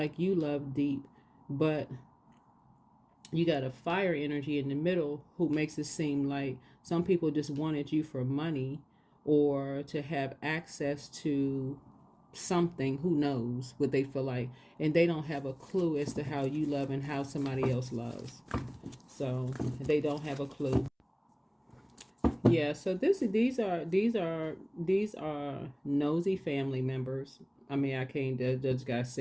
you love deep, but you got a fire energy in the middle who makes it seem like some people just wanted you for money or to have access to something. Who knows what they feel like, and they don't have a clue as to how you love and how somebody else loves. So they don't have a clue. Yeah, so these are nosy family members. I mean, I can't just gotta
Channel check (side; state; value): both; identical; correlation 1.00